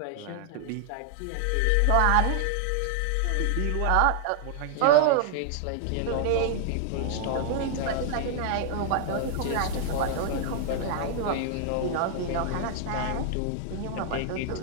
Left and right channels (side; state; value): both; different; correlation 0.00